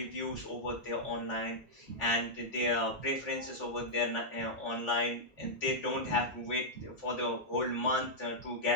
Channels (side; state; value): both; normal; correlation -0.07